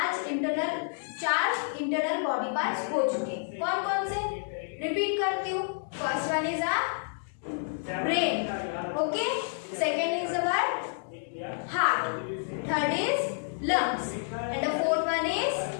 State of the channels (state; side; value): silent; right; digital silence